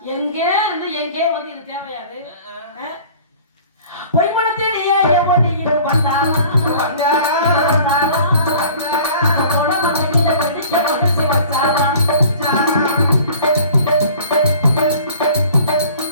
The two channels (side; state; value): both; inverted; correlation -0.46